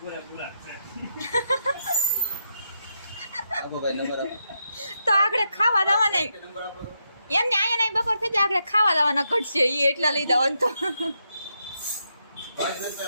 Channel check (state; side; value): inverted; both; correlation -0.82